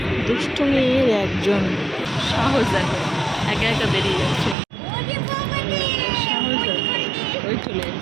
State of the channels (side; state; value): left; drops out; at 4.5 s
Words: দুষ্টুমির একজন, সাহস দেখো, একা একা বেরিয়ে যাচ্ছে, সাহস দেখো, ওই চলে